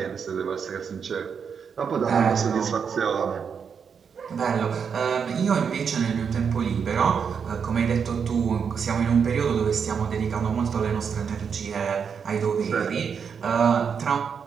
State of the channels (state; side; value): quieter; left; 6.6 dB